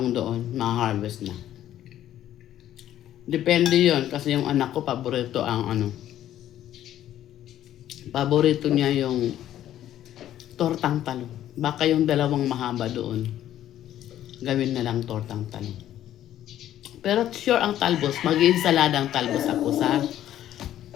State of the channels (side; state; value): right; quieter; 12.1 dB